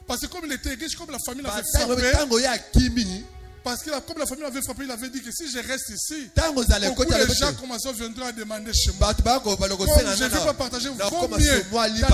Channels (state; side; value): identical; both; correlation 1.00